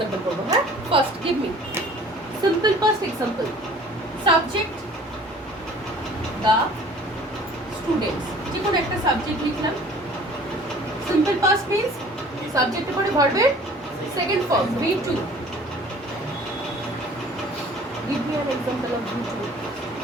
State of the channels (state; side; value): normal; both; correlation 0.50